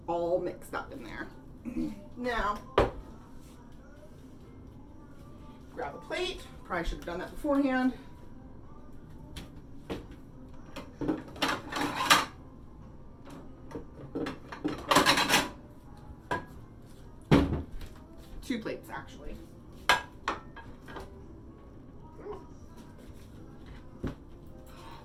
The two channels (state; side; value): identical; both; correlation 1.00